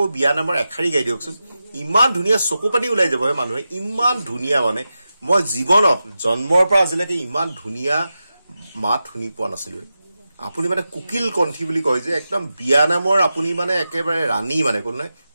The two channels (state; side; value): inverted; both; correlation -0.92